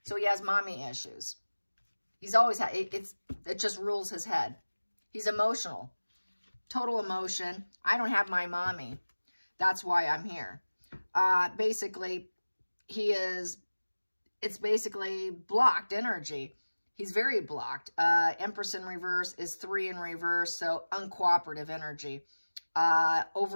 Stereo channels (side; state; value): both; inverted; correlation -1.00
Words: So he has mommy issues. He's always had, it just rules his head. He's emotional. Total emotion. I don't have my mommy. That's why I'm here. Basically, it's basically blocked energy. He's very blocked. Empress in reverse is 3 in reverse, so uncooperative energy.